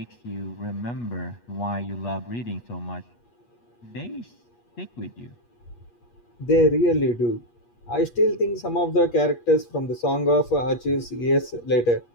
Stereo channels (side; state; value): right; late; 8.4 ms